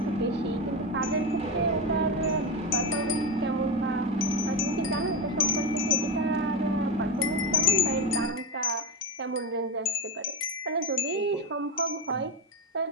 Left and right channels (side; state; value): both; normal; correlation 0.17